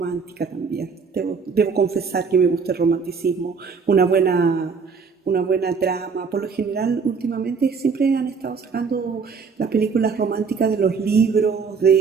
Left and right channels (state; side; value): quieter; left; 5.4 dB